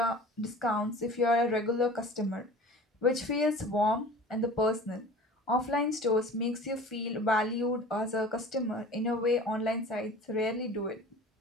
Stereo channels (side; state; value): both; normal; correlation 0.41